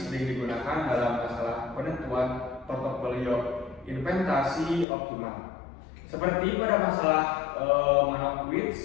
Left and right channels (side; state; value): right; drops out; at 4.9 s